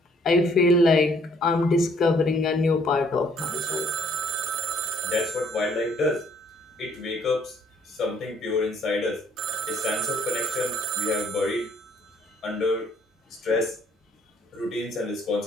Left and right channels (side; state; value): both; normal; correlation 0.63